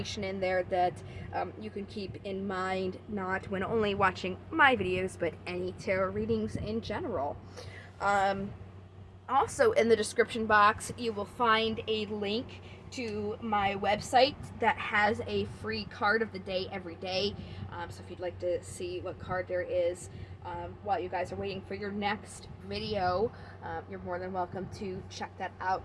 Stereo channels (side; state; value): both; identical; correlation 1.00